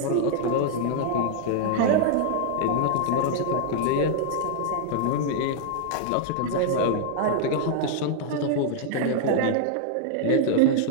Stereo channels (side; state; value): both; different; correlation -0.01